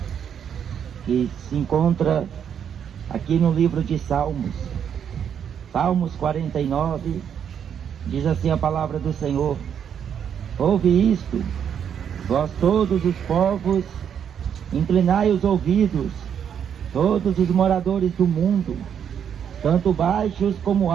que se encontra aqui no livro de Salmos. Salmos 49, diz assim a palavra do Senhor: ouve isto, vós todos os povos, inclinai os ouvidos, todos os moradores do mundo, tanto baixos como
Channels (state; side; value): quieter; left; 8.3 dB